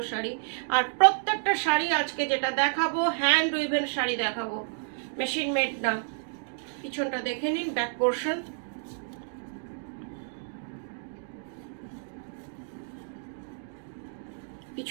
শাড়ি। আর প্রত্যেকটা শাড়ি আজকে যেটা দেখাবো হ্যান্ড উইভেন শাড়ি দেখাবো, মেশিন মেড না। পিছনটা দেখে নিন, ব্যাক পোর্শন,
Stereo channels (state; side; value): silent; left; digital silence